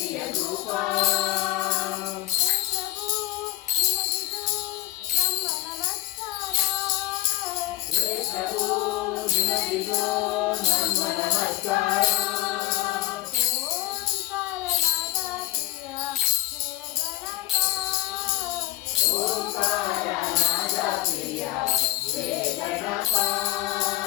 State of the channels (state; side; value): quieter; right; 17.0 dB